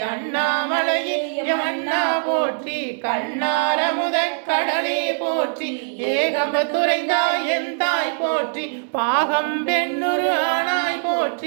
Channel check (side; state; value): left; silent; digital silence